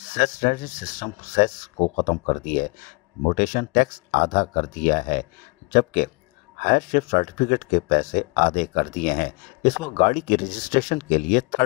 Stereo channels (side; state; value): right; quieter; 28.1 dB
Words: सिस्टम सेस को ख़त्म कर दिया है। मोटेशन टैक्स आधा कर दिया है, जबकि हायर शिप सर्टिफिकेट के पैसे आधे कर दिए हैं। इस वक्त गाड़ी की रजिस्ट्रेशन के लिए